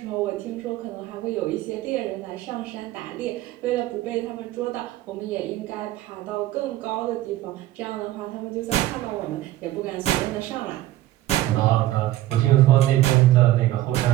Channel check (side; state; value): left; quieter; 15.4 dB